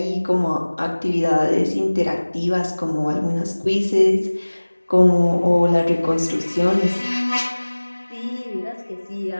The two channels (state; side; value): inverted; both; correlation -1.00